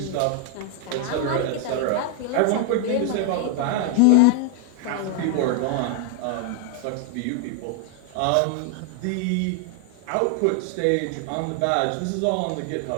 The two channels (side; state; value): both; different; correlation 0.00